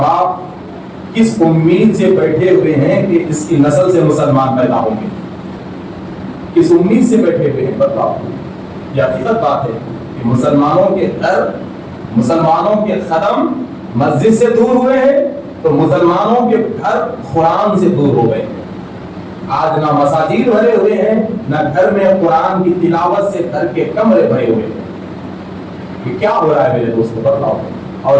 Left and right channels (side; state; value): both; identical; correlation 1.00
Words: کس امید سے بیٹھے ہوئے ہیں کہ اس کی نسل سے مسلمان پیدا ہوں گے؟ کس امید سے بیٹھے ہوئے ہیں؟ بتاؤ. یہ حقیقت بات ہے کہ مسلمانوں کے گھر, مسلمانوں کے قدم مسجد سے دور ہوئے ہیں, تو مسلمانوں کے گھر قرآن سے دور ہو گئے. آج نہ مساجد بھرے ہوئے ہیں, نہ گھر میں قرآن کی تلاوت سے گھر کے کمرے بھرے ہوئے ہیں. یہ کیا ہو رہا ہے میرے دوستو؟ بتاؤ.